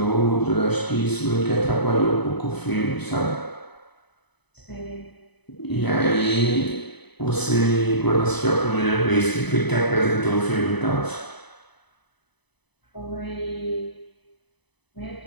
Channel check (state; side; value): late; right; 0.99 ms